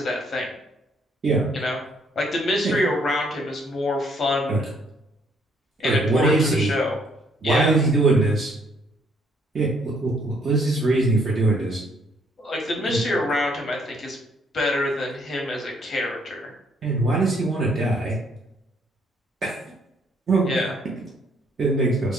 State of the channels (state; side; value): normal; both; correlation 0.67